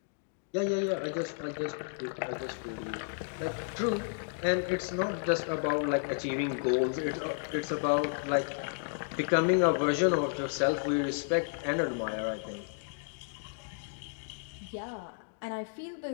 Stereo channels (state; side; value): silent; right; digital silence